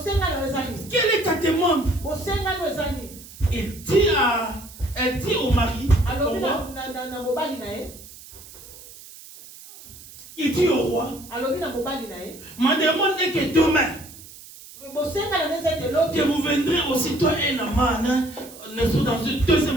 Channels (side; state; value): right; noise; hiss, 18 dB below the sound